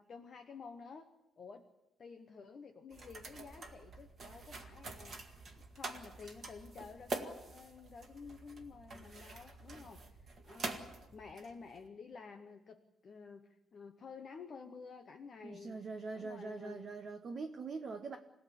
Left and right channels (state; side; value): normal; both; correlation 0.76